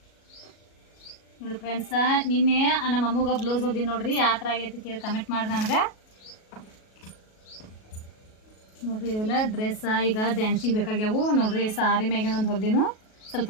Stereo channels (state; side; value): late; right; 37 ms